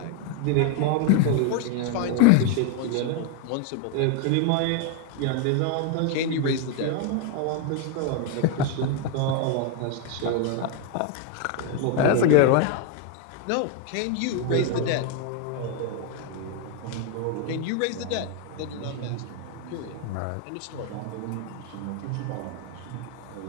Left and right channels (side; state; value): both; different; correlation 0.01